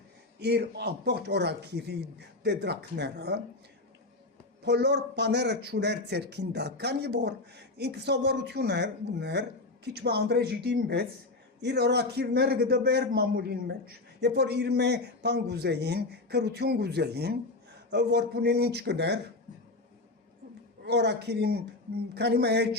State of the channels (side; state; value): right; quieter; 3.1 dB